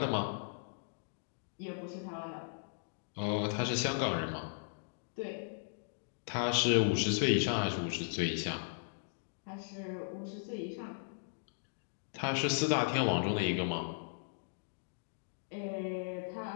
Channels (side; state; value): right; silent; digital silence